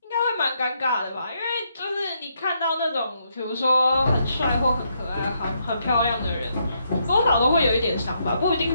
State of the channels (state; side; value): inverted; both; correlation -0.76